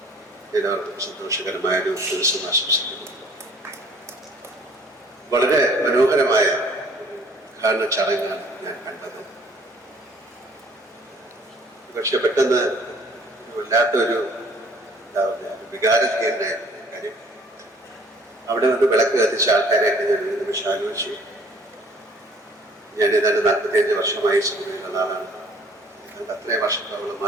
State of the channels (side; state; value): both; normal; correlation 0.56